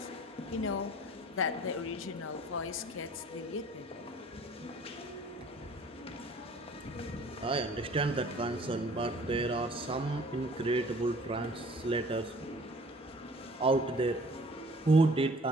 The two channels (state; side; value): normal; both; correlation 0.52